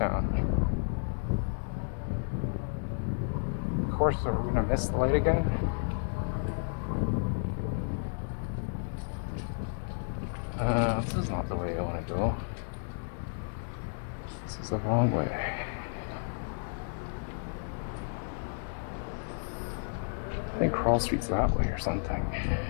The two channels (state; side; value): silent; right; digital silence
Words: Of course, are we gonna miss the light again? This is not the way I want to go. This is the wrong way. I think Corral Street's that way or something.